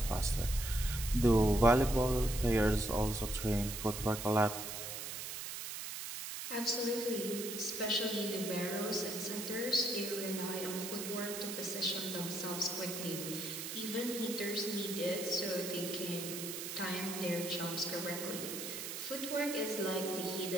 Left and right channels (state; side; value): noise; right; hiss, 6 dB below the sound